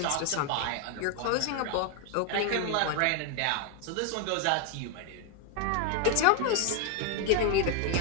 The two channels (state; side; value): different; both; correlation 0.01